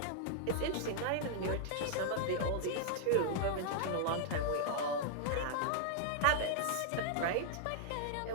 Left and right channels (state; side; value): different; both; correlation -0.01